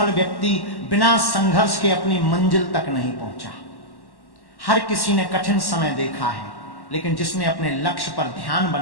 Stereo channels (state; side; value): late; right; 1.1 ms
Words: व्यक्ति बिना संघर्ष के अपनी मंजिल तक नहीं पहुंचा। हर किसी ने कठिन समय देखा है, लेकिन जिसने अपने लक्ष्य पर ध्यान